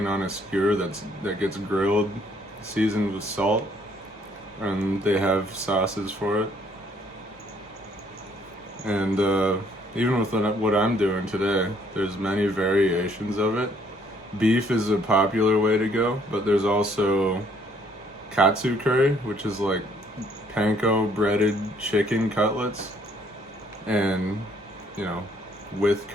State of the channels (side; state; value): both; normal; correlation 0.65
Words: on a skewer that gets grilled, seasoned with salt, and they have sauces for it. And even with what I'm doing today, there's many variations of it. Beef is a popular way to go, but there's also katsu curry, which is like panko breaded chicken cutlets, and, you know, with